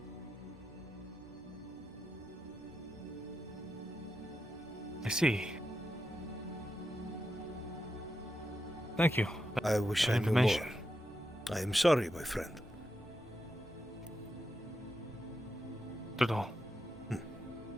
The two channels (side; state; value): both; normal; correlation 0.87